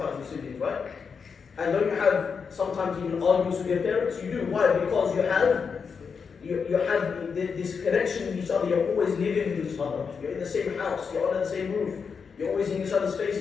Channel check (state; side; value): quieter; right; 5.8 dB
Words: with siblings, right? And don't you have sometimes even arguments with your parents? You do. Why? Because you have this connection with each other. You're always living with each other. You're in the same house. You're under the same roof. You're always in each other's